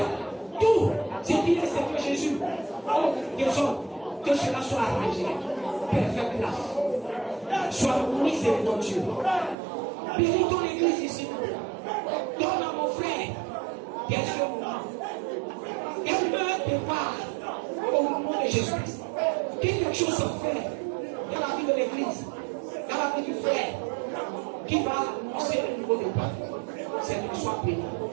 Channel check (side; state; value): left; drops out; at 9.6 s